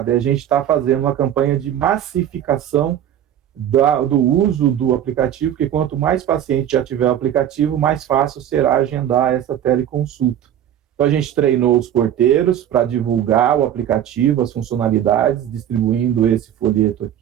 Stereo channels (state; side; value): quieter; left; 10.6 dB